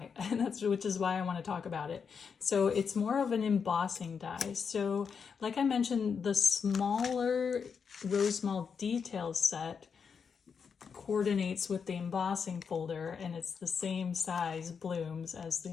and which is why I want to talk about it. So it's more of an embossing die. So like I mentioned, the smaller Rosemal details set coordinates with the embossing folder, and it's the same size blooms as the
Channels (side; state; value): right; quieter; 6.2 dB